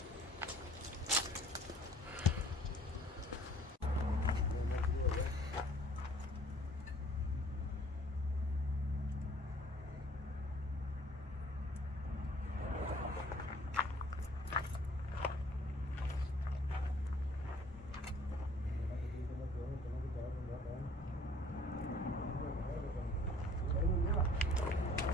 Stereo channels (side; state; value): both; normal; correlation 0.55